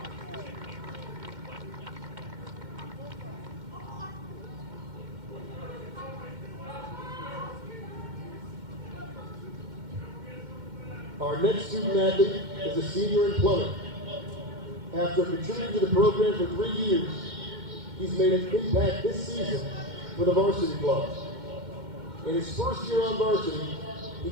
Our next student athlete is a senior in plumbing. After contributing to the program for 3 years, he's made an impact this season for the varsity club. In his first year on varsity, he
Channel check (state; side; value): late; left; 2.1 ms